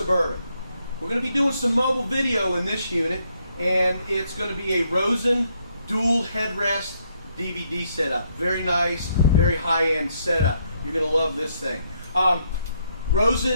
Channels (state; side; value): inverted; both; correlation -0.74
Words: We're going to be doing some mobile video in this unit, and it's going to be a Rosen dual headrest DVD setup. Very nice, very high-end setup. You're going to love this thing.